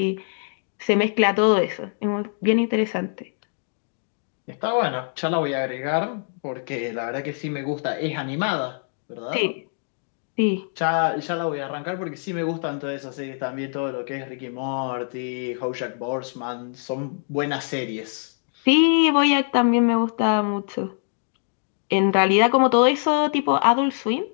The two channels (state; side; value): silent; right; 63 dB below the other